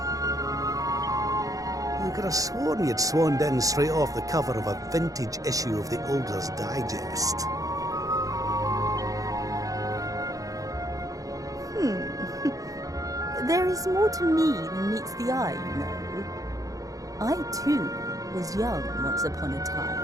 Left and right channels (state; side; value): late; left; 0.17 ms